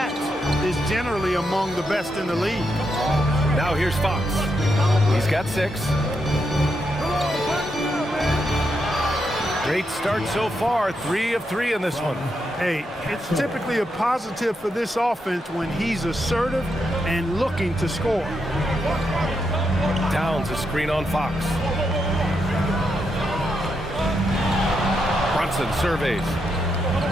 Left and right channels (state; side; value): normal; both; correlation 0.82